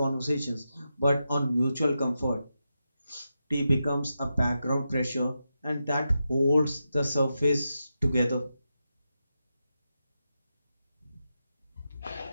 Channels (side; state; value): both; inverted; correlation -0.88